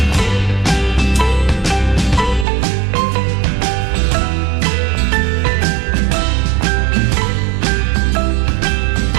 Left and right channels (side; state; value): left; drops out; at 2.5 s